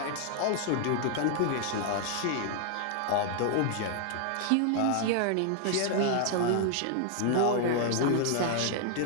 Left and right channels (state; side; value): different; both; correlation 0.00